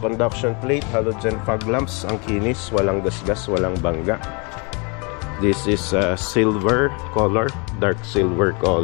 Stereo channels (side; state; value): right; quieter; 32.1 dB